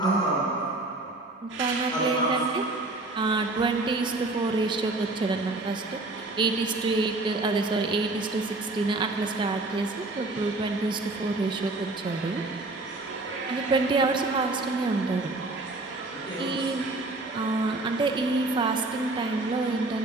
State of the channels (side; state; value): left; quieter; 3.0 dB